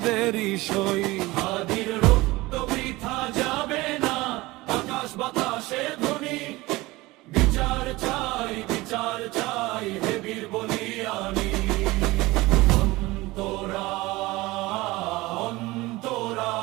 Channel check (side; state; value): left; quieter; 20.5 dB